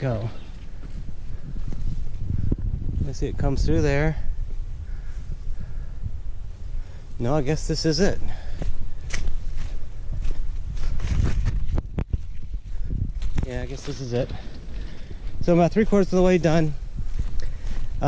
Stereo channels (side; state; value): both; identical; correlation 1.00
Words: Let's see, it comes through there. No, I guess this is it. Yeah, I guess this is it. So I'm about 3/4 of the way done.